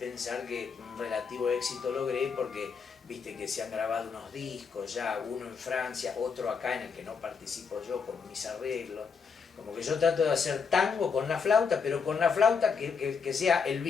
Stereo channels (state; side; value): quieter; right; 5.7 dB